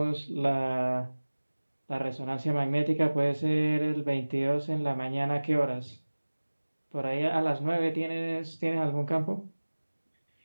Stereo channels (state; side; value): inverted; both; correlation -1.00